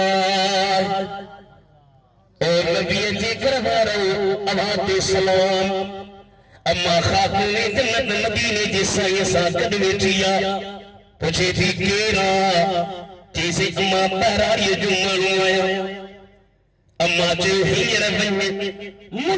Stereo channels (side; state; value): both; identical; correlation 1.00